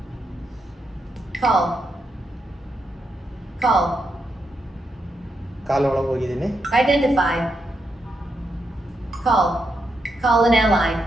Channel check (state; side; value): normal; both; correlation 0.83